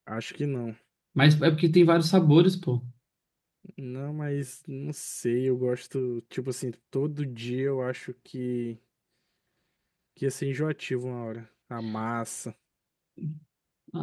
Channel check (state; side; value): identical; both; correlation 1.00